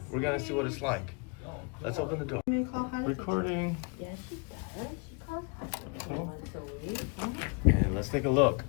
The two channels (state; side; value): quieter; right; 33.0 dB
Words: We're gonna see what it's like. Let's open the door. Recording. Oh. And let's take a look.